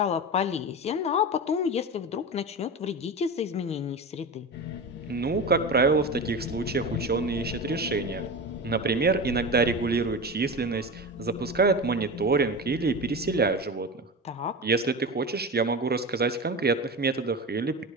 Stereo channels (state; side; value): normal; both; correlation 0.26